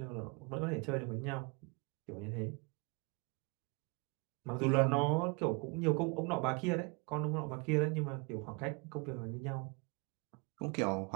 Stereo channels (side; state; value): left; quieter; 31.1 dB